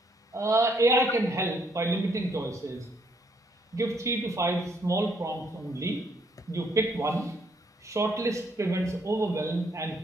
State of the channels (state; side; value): normal; both; correlation 0.70